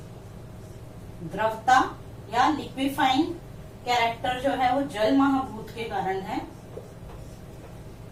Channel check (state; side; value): identical; both; correlation 1.00